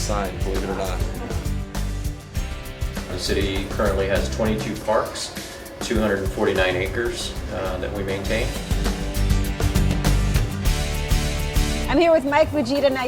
believe it or not. The city currently has 22 parks, 249 acres that we maintain. I'm here with Mike Fujita. Now,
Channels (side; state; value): both; identical; correlation 1.00